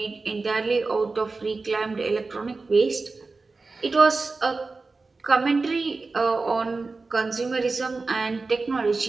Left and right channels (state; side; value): quieter; left; 3.9 dB